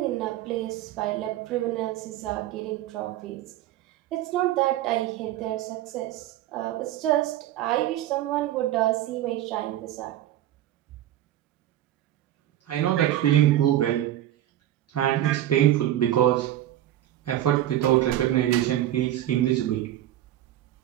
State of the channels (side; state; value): left; quieter; 13.1 dB